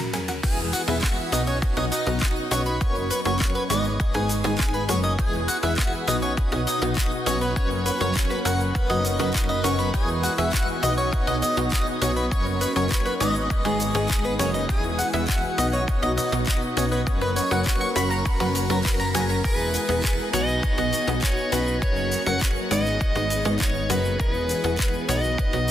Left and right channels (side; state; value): both; normal; correlation 0.85